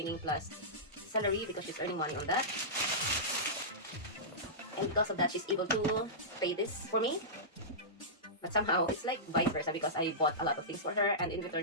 plus salary because she's earning money on that. And because of that, she's able to pay this for me. But somehow, it's like vice versa because I bought a lot of things for her, and in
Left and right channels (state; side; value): normal; both; correlation -0.17